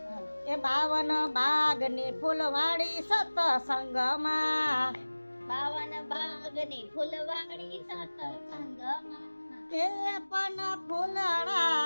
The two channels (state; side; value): inverted; both; correlation -1.00